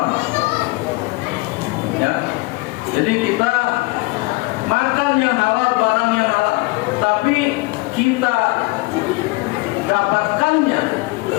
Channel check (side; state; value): right; quieter; 24.0 dB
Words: Ya, jadi kita makan yang halal, barang yang halal, tapi kita dapatkannya